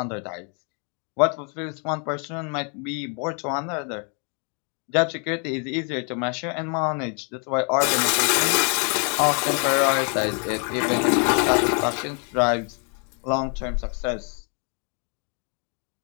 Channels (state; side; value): quieter; right; 38.8 dB